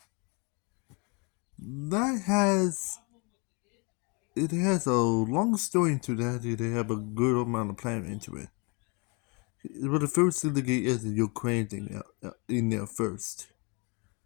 That has it has a long story into that. They have a good amount of planning into it. But the first thing to get is the Ukraine thing in there first.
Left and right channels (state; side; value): quieter; right; 31.6 dB